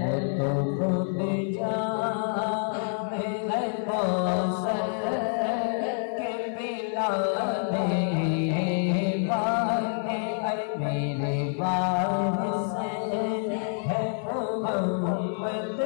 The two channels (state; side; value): silent; right; 60 dB below the other